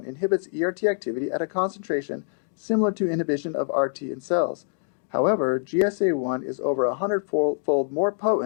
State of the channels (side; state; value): right; silent; digital silence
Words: inhibits ERT activity at a concentration similar to inhibition of RT in cells. However, GSA1 is over 100-fold more